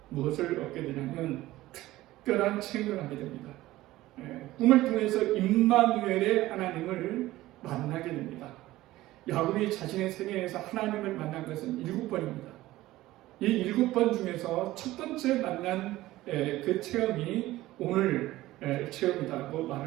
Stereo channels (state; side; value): quieter; left; 16.7 dB